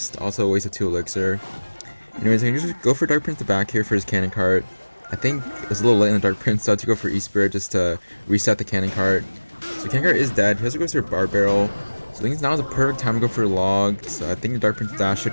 Also a waste of 2 elixir. Anyways, I can just go for Dark Prince the back here for his cannon cart. I think it was a little late in the Dark Prince, so I had to go for E-Spirit just to reset the cannon cart. So the cannon cart is dead. He also goes for a bar barrel. So I think now is a perfect time to go for a log. So I think the Dark Prince dash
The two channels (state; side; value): inverted; both; correlation -1.00